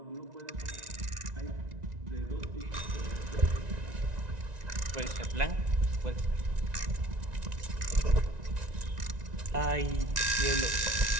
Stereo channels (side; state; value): left; late; 1.9 ms